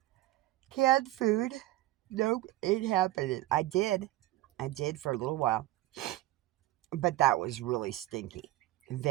canned food. Nope, ain't happening. I did for a little while. But that was really stinky.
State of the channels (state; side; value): quieter; left; 16.3 dB